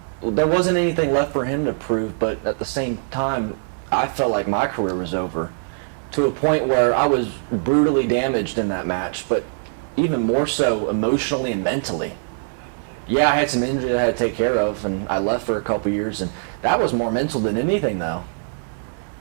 Well, there wasn't anything left for him to prove, but at the same time, I felt like my career was over, to a point where I was brutally damaged in that match, but even more so emotionally and mentally. Yeah, I had some injury that I had to take care of, and I left for a couple years, and that was more mental than anything, though.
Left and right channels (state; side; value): silent; left; digital silence